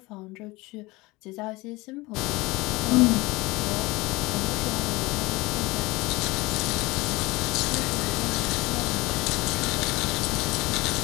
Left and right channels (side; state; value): right; quieter; 22.3 dB